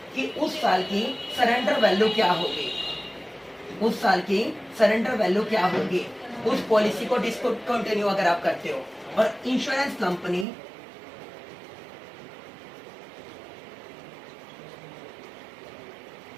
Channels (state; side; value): drops out; left; at 10.5 s